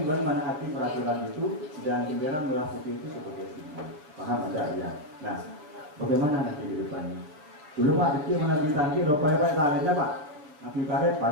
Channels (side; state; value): left; late; 6.7 ms